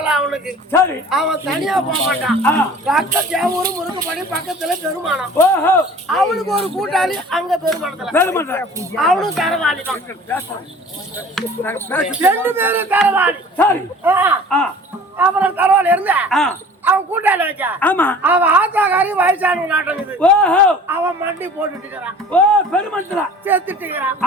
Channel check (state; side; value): normal; both; correlation 0.45